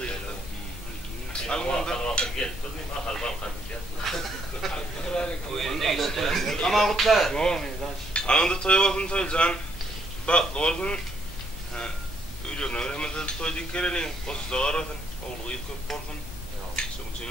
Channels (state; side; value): normal; both; correlation 0.70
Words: Gel. Durmayayım. Akal balkan. Ama kutlar. Anında toy olsun toy can. Bak olsun. Öyle öğrenmede toy dikkerenin. Kosu da arasın. Oğlu ilk köp olsun. Çabuk